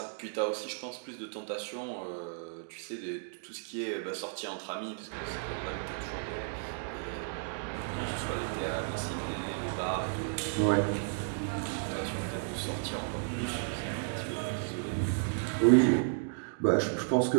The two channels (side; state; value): left; silent; digital silence